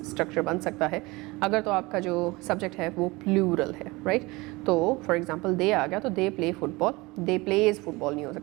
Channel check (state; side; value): quieter; left; 22.9 dB